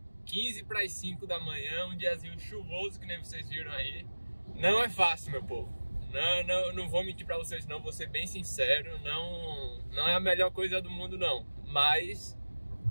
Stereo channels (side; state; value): both; inverted; correlation -1.00